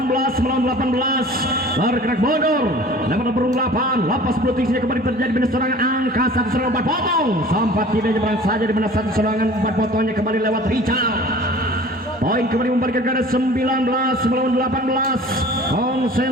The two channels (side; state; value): both; normal; correlation 0.45